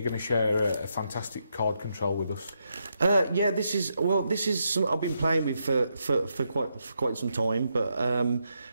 going to share a fantastic card control with us. This is something I've been playing with for quite some time, but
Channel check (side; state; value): both; inverted; correlation -0.81